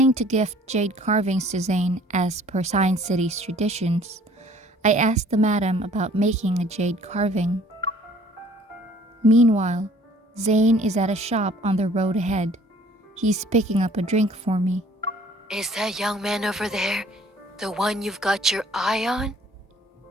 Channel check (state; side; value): normal; both; correlation 0.55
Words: to gift jade carvings to Zayne as per Science City's traditions, I asked the madam about making a jade carving. Meanwhile, Zayne is at a shop on the road ahead. He's picking up a drink for me. Is that young man over there the one you've got your eye on?